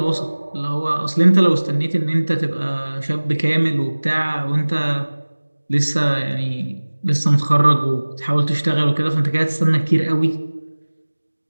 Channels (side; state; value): both; inverted; correlation -1.00